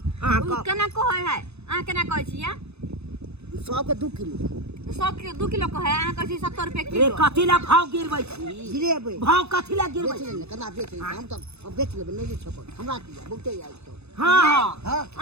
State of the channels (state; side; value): late; left; 0.80 ms